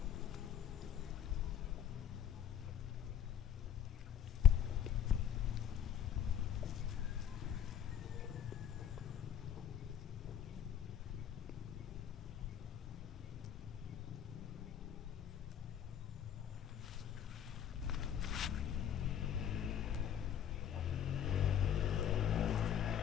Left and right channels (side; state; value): right; quieter; 9.7 dB